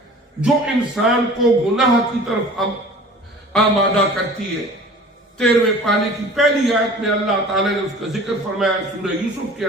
جو انسان کو گناہ کی طرف آمادہ کرتی ہے. 13ویں پارے کی پہلی آیت میں اللہ تعالیٰ نے اس کا ذکر فرمایا سورہ یوسف کے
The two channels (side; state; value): both; normal; correlation 0.44